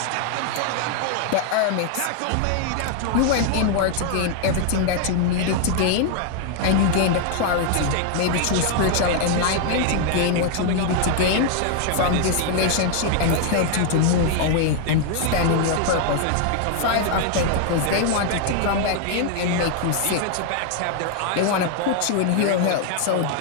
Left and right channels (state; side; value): different; both; correlation 0.00